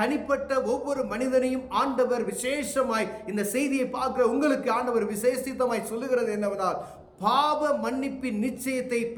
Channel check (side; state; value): both; identical; correlation 1.00